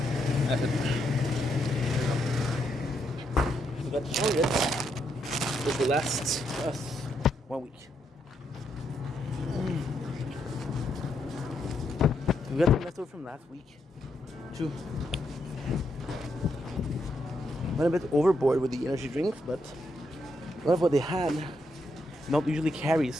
That's it. We got chocolate. This will last us 1 week. We got the leftover from last week. Too. Went a bit overboard with the energy drinks, but a lot of what they had not usually carry,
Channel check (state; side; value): normal; both; correlation 0.79